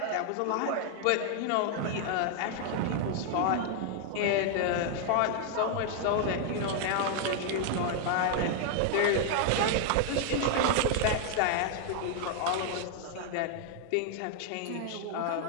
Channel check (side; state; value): both; different; correlation 0.00